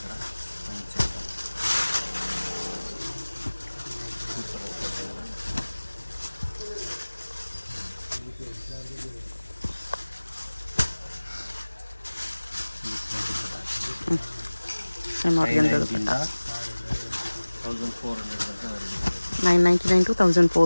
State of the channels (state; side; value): inverted; both; correlation -1.00